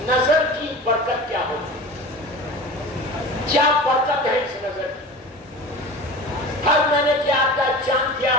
نظر کی برکت کیا ہوگی، کیا برکت ہے اس نظر کی. ہر مہینے کی 8 تاریخ، چاند کی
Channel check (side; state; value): both; normal; correlation 0.35